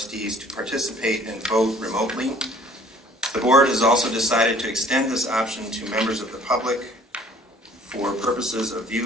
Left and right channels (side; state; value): both; normal; correlation 0.54